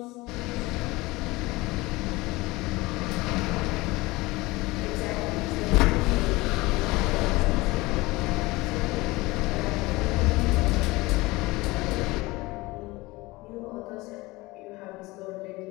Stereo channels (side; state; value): right; quieter; 21.4 dB